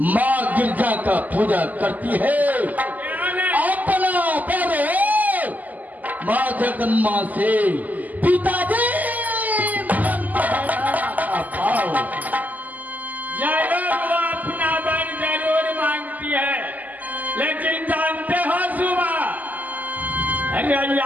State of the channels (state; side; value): late; left; 0.081 ms